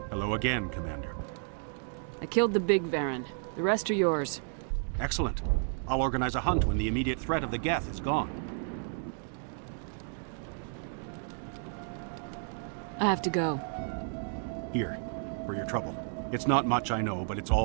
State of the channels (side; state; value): left; silent; 56 dB below the other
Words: Hello again, Commander. I killed the big Varen. The rest are yours. Excellent. I'll organize a hunt when the immediate threat of the Geth is gone. I have to go. Here, for your trouble. It's not much, I know, but it's